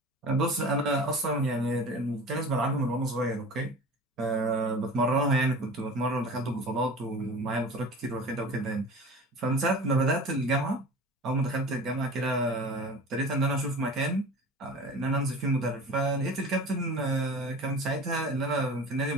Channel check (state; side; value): normal; both; correlation 0.38